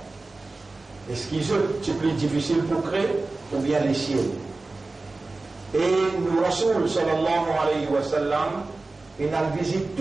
Est-ce qu'ils c'est plus difficile pour créer ou bien les ciels? Et nous, Rasoul sallallahu alayhi wa sallam, il a visité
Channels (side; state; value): left; quieter; 3.4 dB